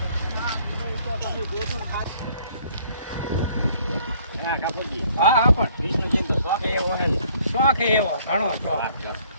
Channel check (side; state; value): both; inverted; correlation -0.61